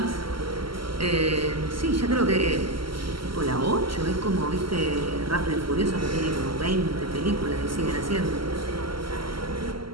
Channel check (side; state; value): left; late; 0.74 ms